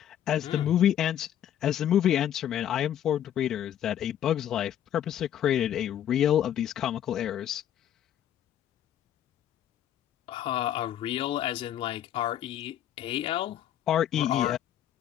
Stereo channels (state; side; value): quieter; right; 10.7 dB